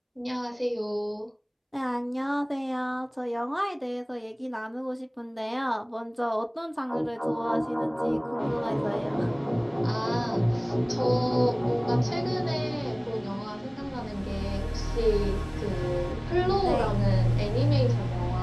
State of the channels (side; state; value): both; identical; correlation 1.00